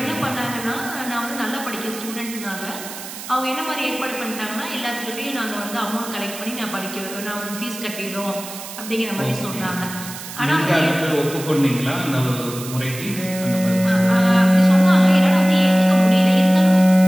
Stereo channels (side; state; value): right; noise; hiss, 12 dB below the sound